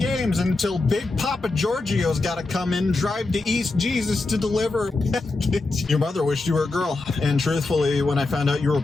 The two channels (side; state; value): right; quieter; 3.3 dB